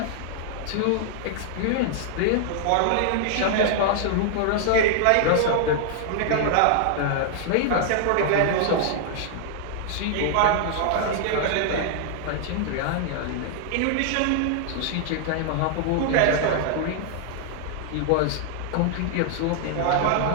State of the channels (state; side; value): different; both; correlation -0.01